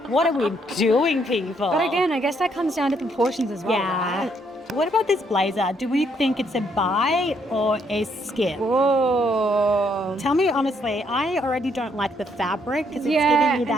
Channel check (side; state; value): both; normal; correlation 0.71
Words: What are we doing, people? But again, I guess that comes down to proportions as well. Yeah. Right? What about this blazer? Do we think it's a buy or a skip? Whoa. Tell me honestly, I already don't like the fabric because it's Yeah, giving me